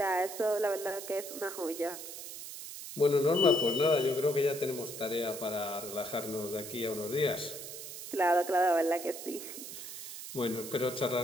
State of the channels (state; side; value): noise; right; hiss, 10 dB below the sound